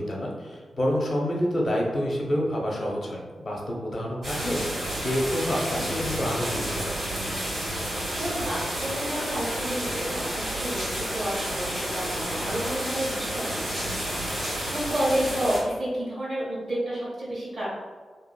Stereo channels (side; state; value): both; normal; correlation 0.89